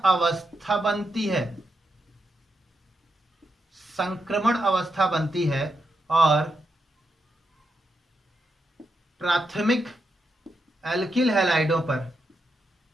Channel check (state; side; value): normal; both; correlation 0.84